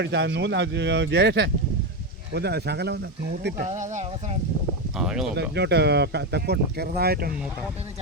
ജയേഷേ ഒന്ന് ശകലം ഒന്ന് നൂത്തിട്ട് ഇങ്ങോട്ട് തെക്കോട്ട് ചെറുതായിട്ടൊന്ന് നൂത്താം.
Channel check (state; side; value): normal; both; correlation 0.11